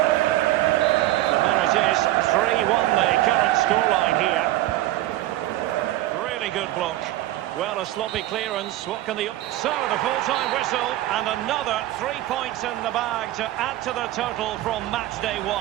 So there it is, 3-1 the current scoreline here. Really good block. Well, a sloppy clearance. What can the... So, the full-time whistle, and another 3 points in the bag to add to the total from match day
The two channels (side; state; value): left; quieter; 15.4 dB